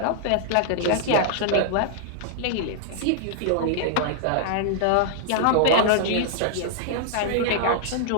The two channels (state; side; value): different; both; correlation -0.01